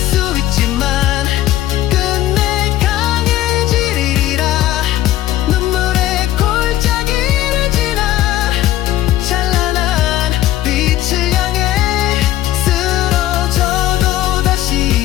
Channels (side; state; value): right; quieter; 13.8 dB